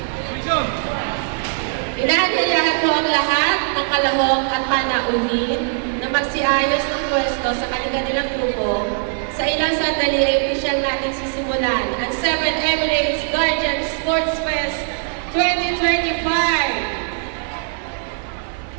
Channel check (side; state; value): left; silent; 58 dB below the other